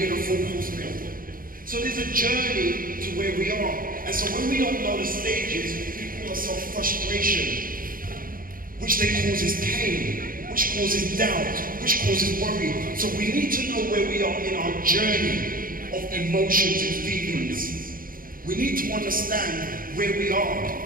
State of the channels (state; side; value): late; left; 0.41 ms